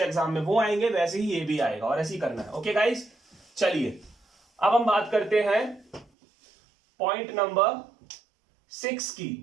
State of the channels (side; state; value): left; drops out; at 6.1 s